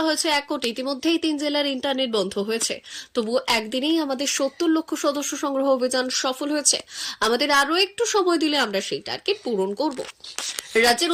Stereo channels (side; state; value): both; identical; correlation 1.00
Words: হয়েছে 1 কোটি, ইতিমধ্যেই 3 জেলার ইন্টারনেট বন্ধ হয়েছে, তবুও একদিনেই আমাদের 70 লক্ষ সদস্য সংগ্রহ অভিযান সফল হয়েছে। আমাদের আরো একটু সময় দিলে আমরা সেই টার্গেট পূরণ করব। রাজ্যের